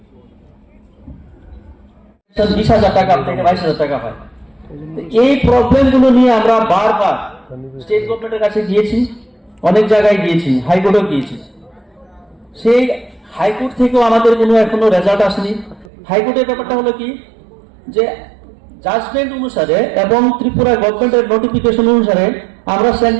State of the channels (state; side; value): drops out; left; at 15.9 s